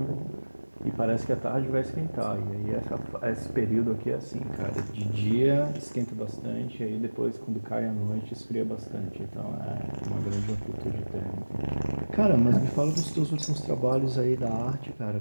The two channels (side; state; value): both; inverted; correlation -1.00